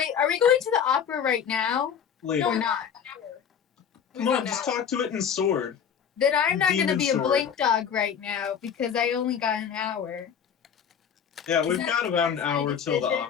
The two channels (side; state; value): right; quieter; 7.8 dB